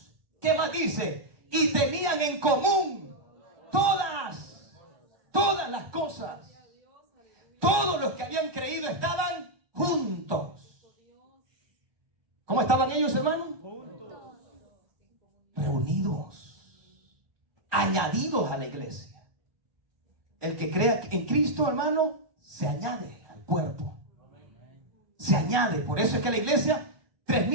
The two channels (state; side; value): late; left; 1.2 ms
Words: ¿Qué más dice? Y tenían en común todas las cosas. Todos los que habían creído estaban juntos. ¿Cómo estaban ellos, hermano? Reunidos, añadidos a la iglesia. El que crea en Cristo, hermano, se añade al cuerpo. Se añade. Por eso es que la iglesia,